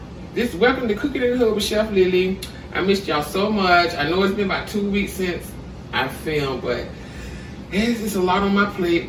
Welcome to Cooking in the Hood with Chef Lily. I missed y'all so much. I know it's been about 2 weeks since I filmed, but it's just a lot on my plate.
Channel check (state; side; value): identical; both; correlation 1.00